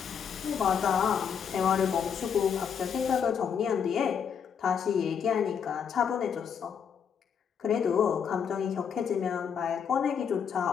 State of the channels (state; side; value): quieter; right; 7.3 dB